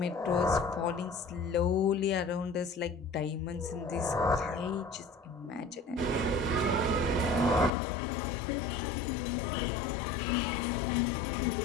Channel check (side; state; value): right; drops out; at 7.7 s